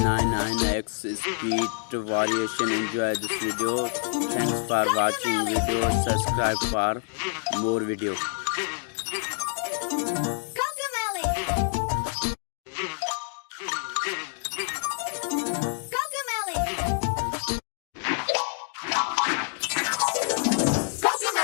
speed variation. Enjoy this video. Thanks for watching video. Subscribe for more video.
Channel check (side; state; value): right; silent; 56 dB below the other